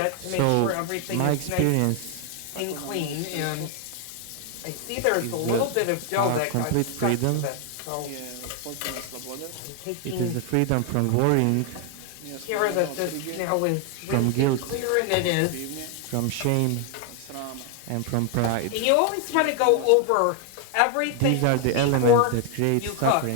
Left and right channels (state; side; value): different; both; correlation 0.00